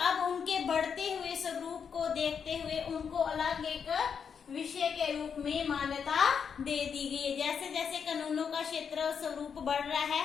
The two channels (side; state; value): right; quieter; 6.8 dB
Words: उनके बढ़ते हुए स्वरूप को देखते हुए उनको अलग एक विषय के रूप में मान्यता दे दी गई है। जैसे जैसे कानूनों का क्षेत्र स्वरूप बढ़ रहा है